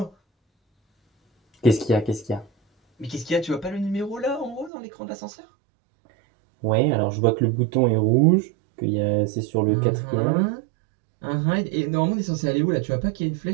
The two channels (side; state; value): left; drops out; at 4.7 s